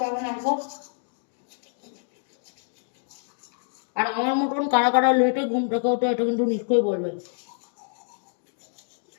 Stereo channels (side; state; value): right; silent; digital silence